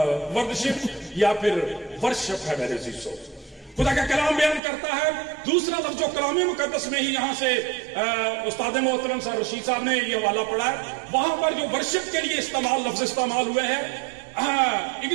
وردشپ یا پھر ورشپ ہے میرے عزیزو. خدا کا کلام بیان کرتا ہے. دوسرا لفظ جو کلام مقدس میں ہی یہاں سے استاد محترم صاحب رشید صاحب نے یہ حوالہ پڑھا ہے، وہاں پر جو ورشپ کے لیے لفظ استعمال ہوئے ہیں،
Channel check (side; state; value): left; drops out; at 4.6 s